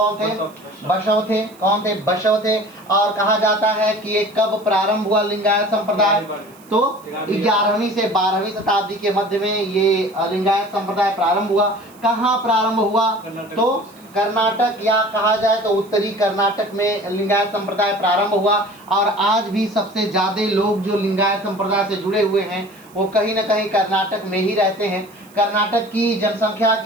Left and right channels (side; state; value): right; noise; hiss, 26 dB below the sound